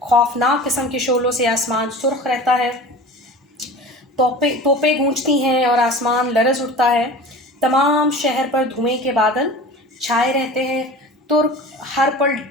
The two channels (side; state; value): both; normal; correlation 0.37